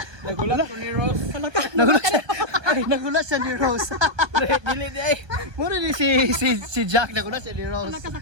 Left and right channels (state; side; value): late; left; 1.2 ms